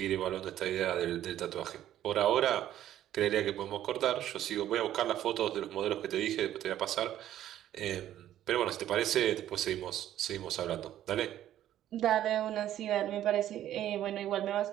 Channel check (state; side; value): quieter; left; 12.1 dB